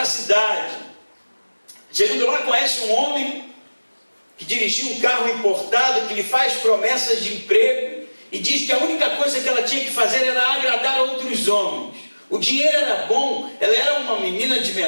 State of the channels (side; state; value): both; inverted; correlation -1.00